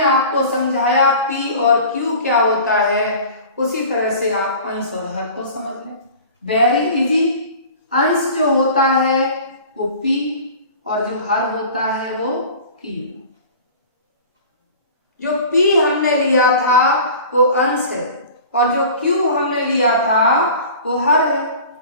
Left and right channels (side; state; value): both; inverted; correlation -0.41